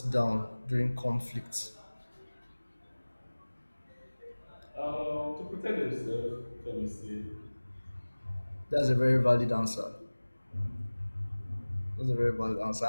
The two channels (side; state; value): both; inverted; correlation -1.00